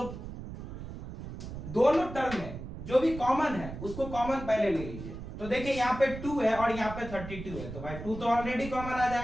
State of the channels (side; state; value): right; noise; rumble, 10 dB below the sound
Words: दोनों टर्म में जो भी कॉमन है उसको कॉमन पहले ले लीजिए। तो देखिए यहाँ पे 2 है और यहाँ पे 32 है, तो भाई 2 तो ऑलरेडी कॉमन आ